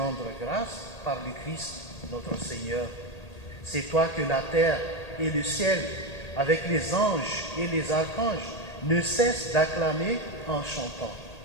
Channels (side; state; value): right; late; 1.8 ms